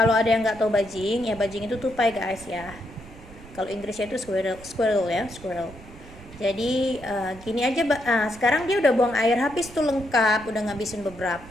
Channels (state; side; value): noise; right; rumble, 19 dB below the sound